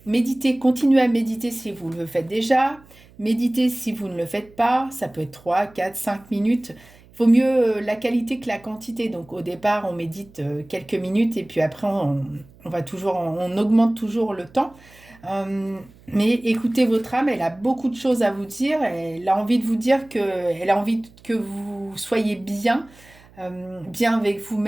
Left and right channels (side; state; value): right; noise; hum, 26 dB below the sound